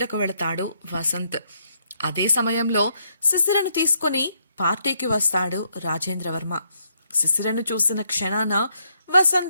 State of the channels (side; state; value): both; inverted; correlation -0.75